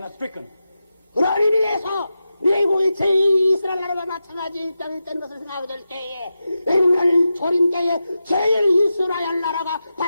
stricken. 그런 의미에서 미국이 제2이스라엘 나라가 마찬가지 입장이 있다는 것을 생각하게 될 때에 오늘 조림 때에 제1이스라엘 나라가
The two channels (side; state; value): both; inverted; correlation -0.90